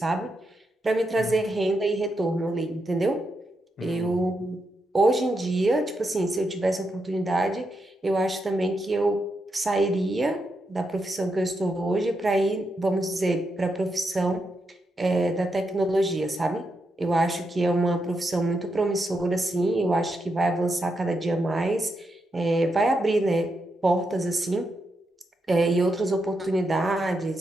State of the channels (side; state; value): both; normal; correlation 0.84